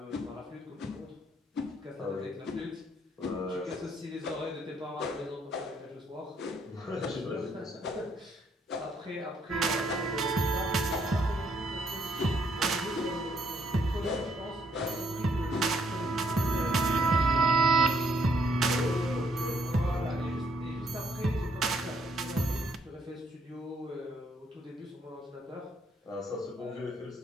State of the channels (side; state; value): both; normal; correlation 0.70